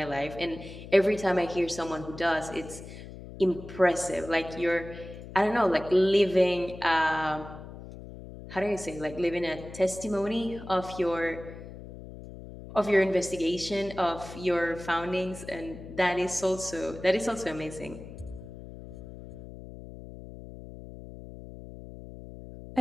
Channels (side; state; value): left; noise; hum, 14 dB below the sound